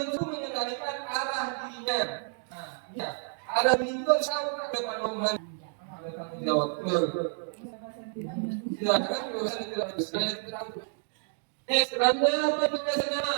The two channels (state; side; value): silent; left; 58 dB below the other